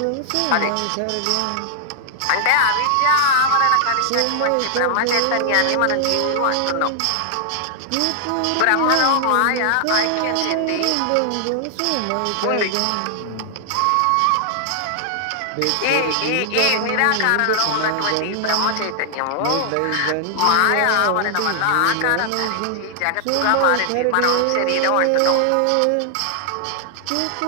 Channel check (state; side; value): different; both; correlation -0.01